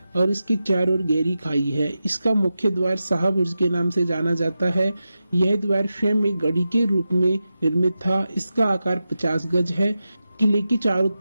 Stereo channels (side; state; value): both; inverted; correlation -0.91